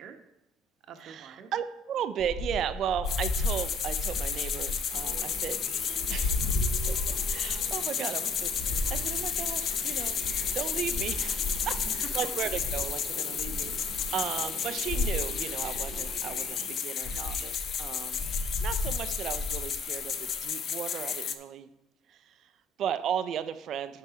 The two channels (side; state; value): both; normal; correlation 0.59